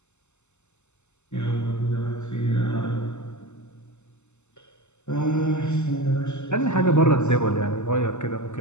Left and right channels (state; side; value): late; right; 0.83 ms